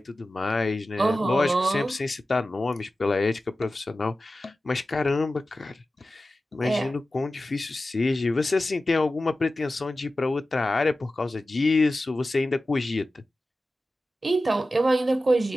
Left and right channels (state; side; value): normal; both; correlation 0.94